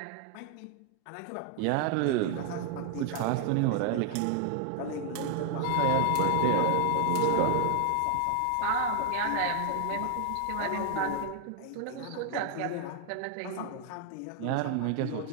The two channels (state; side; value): different; both; correlation 0.00